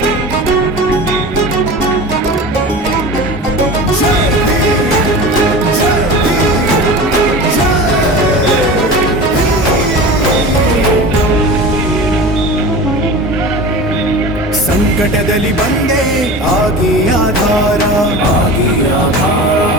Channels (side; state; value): both; normal; correlation 0.33